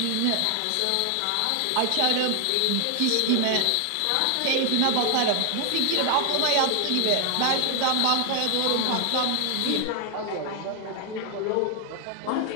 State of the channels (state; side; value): different; both; correlation 0.00